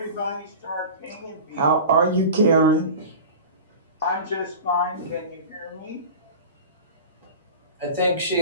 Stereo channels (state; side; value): inverted; both; correlation -0.34